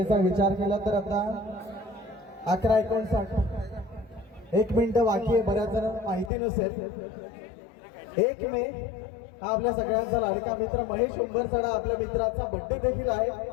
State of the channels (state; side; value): drops out; right; at 6.3 s